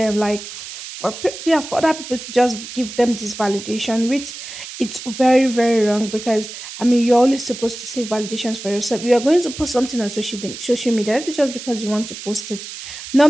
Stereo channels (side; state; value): right; noise; hiss, 11 dB below the sound